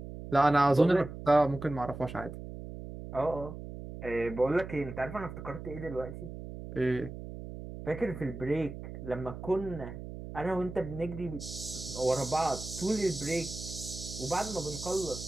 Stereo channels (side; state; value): right; noise; hum, 10 dB below the sound